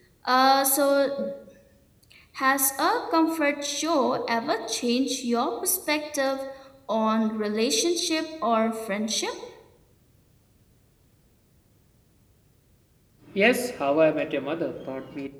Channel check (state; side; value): identical; both; correlation 1.00